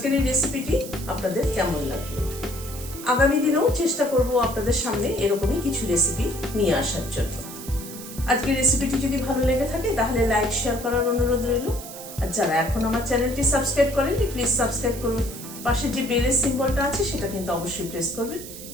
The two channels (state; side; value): noise; right; hiss, 13 dB below the sound